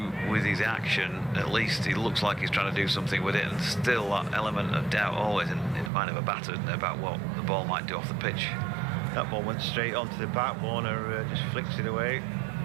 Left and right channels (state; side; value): drops out; left; at 5.9 s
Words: with his action, at least he looks like he's trying to do something with it, and still that element of doubt always in the mind of a batter about what the ball might do off the pitch. That ball went straight onto the bat. Warner just flicks it away,